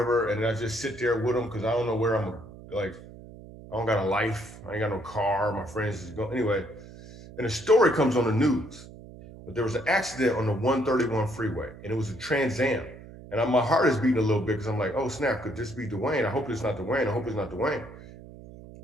And I just sit there with him because I don't know where I'm, like, I don't got a life. I ain't got no car. My friends is going, anyway. And a story comes on the news. But there was an accident on the 131 freeway and it was a Trans Am. And my heart is beating a little bit because I'm like, oh snap, could this be Dwayne? I hope it's not Dwayne. I hope it's not Dwayne.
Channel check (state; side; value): noise; right; hum, 17 dB below the sound